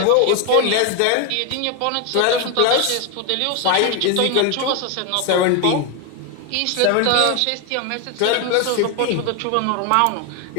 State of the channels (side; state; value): both; different; correlation 0.01